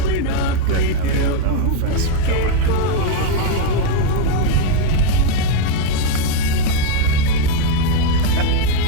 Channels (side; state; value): both; different; correlation 0.01